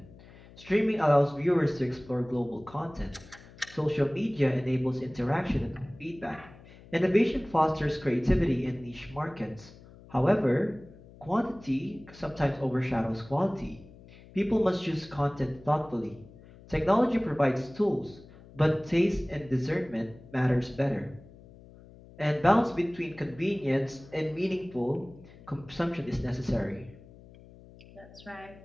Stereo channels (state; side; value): noise; left; hum, 21 dB below the sound